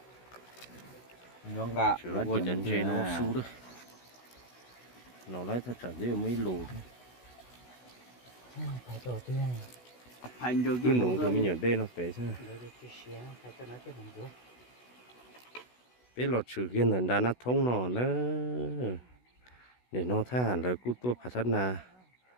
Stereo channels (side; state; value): right; late; 16 ms